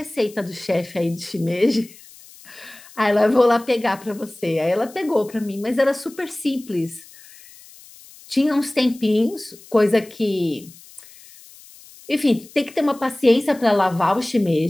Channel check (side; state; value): left; noise; hiss, 22 dB below the sound